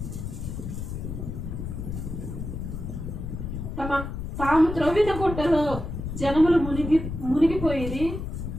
తాము త్రవ్విన గుట్టలో జనములు మునిగిపోయి,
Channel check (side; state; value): left; noise; rumble, 6 dB below the sound